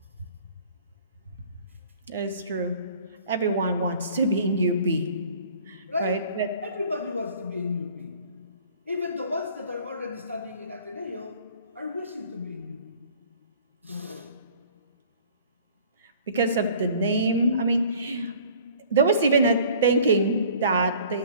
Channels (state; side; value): inverted; both; correlation -0.51